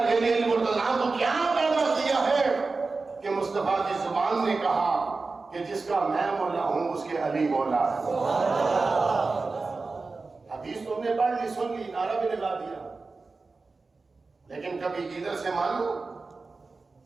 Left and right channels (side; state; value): left; quieter; 3.9 dB